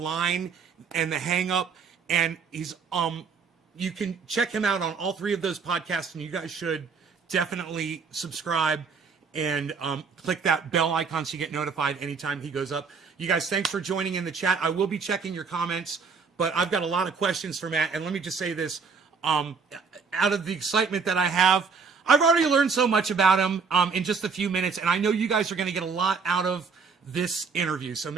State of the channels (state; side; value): quieter; left; 5.3 dB